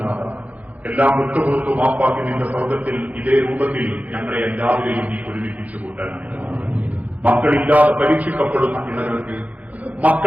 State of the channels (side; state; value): left; late; 0.073 ms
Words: നാഥ. എല്ലാം വിട്ടുപുറത്തു മാപ്പാക്കി നിന്റെ സ്വർഗത്തിൽ ഇതേ രൂപത്തിൽ ഞങ്ങളെ എല്ലാവരെയും നീ ഒരുമിപ്പിച്ചു കൂട്ടണം. മക്കളില്ലാതെ പരീക്ഷിക്കപ്പെടുന്ന ഇണകൾക്ക്